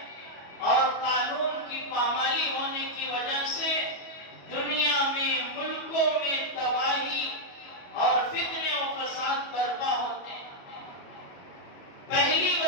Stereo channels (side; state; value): right; late; 22 ms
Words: اور قانون کی پامالی ہونے کی وجہ سے دنیا میں، ملکوں میں تباہی اور فتنے و فساد برپا ہوتے ہیں۔ پہلی